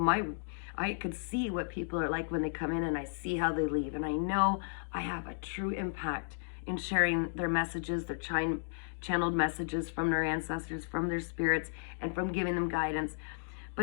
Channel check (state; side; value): silent; right; digital silence